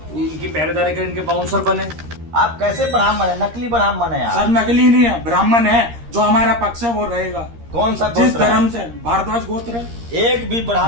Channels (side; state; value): left; late; 13 ms